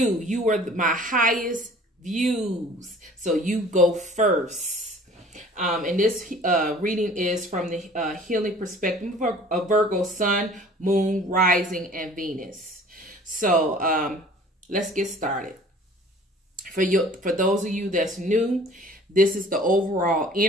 You are my highest views, so you go first. And this reading is from the healing perspective of Virgo, Sun, Moon, Rising, and Venus. So let's get started. For those of you that's new, this is the overall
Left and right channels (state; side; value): normal; both; correlation 0.49